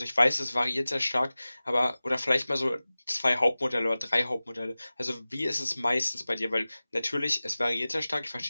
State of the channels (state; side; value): inverted; both; correlation -0.97